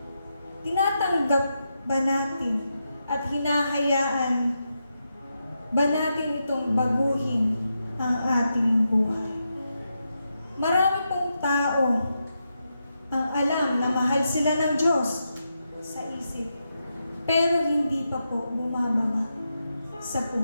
tinatanggap ba natin at hinahayaan ba natin itong baguhin ang ating buhay? Marami pong tao ang alam na mahal sila ng Diyos sa isip, pero hindi pa po bumababa sa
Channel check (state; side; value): inverted; both; correlation -0.86